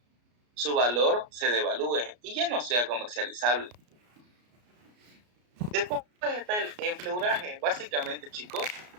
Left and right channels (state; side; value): late; left; 33 ms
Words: su valor se devalúe y ya no sea comercializable. Después está el enfleuraje. Básicamente, chicos,